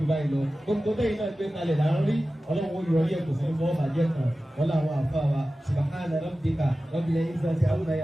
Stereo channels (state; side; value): normal; both; correlation 0.95